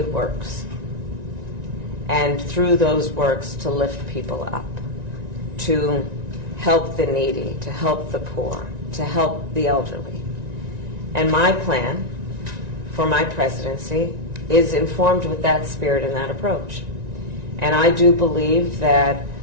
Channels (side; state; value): left; late; 1.9 ms